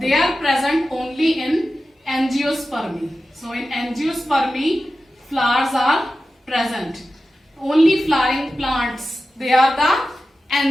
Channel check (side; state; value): both; normal; correlation 0.93